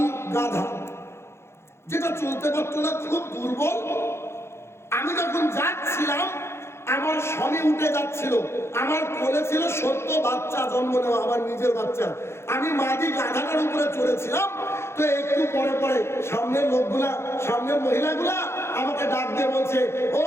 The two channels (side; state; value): right; late; 0.12 ms